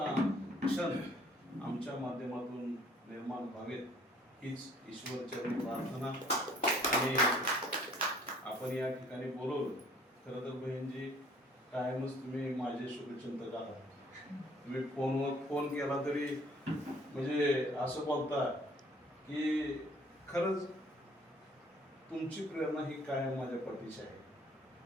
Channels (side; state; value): both; normal; correlation 0.58